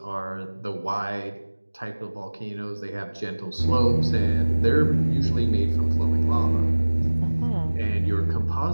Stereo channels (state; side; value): inverted; both; correlation -1.00